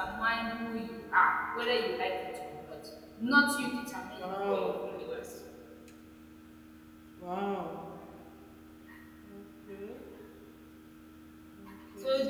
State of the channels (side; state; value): both; identical; correlation 1.00